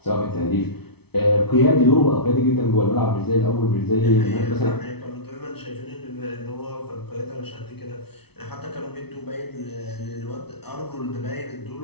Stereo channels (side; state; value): right; late; 0.98 ms